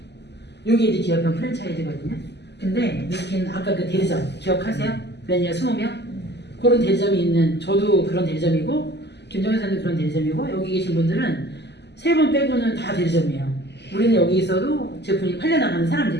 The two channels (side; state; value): right; late; 0.50 ms